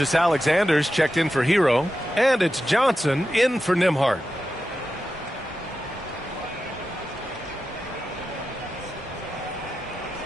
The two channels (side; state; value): both; normal; correlation 0.91